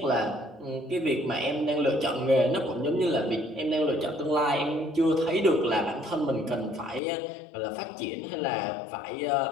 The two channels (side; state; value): right; drops out; at 7.0 s